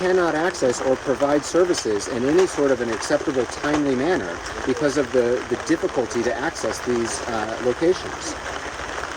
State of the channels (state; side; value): identical; both; correlation 1.00